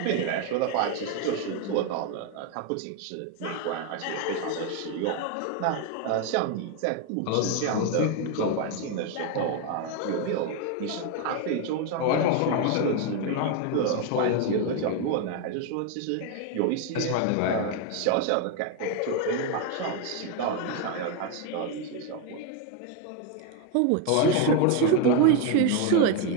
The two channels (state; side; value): different; both; correlation 0.01